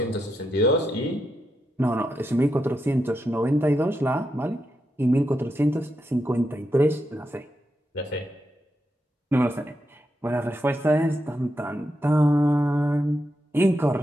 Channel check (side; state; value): both; normal; correlation 0.85